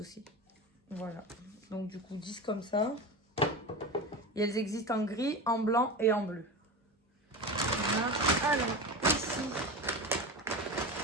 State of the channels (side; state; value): both; normal; correlation 0.26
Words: aussi. Voilà. Donc, du coup, 10 comme ça. Et elles existent en gris, en blanc et en bleu. Voilà. Alors, ici,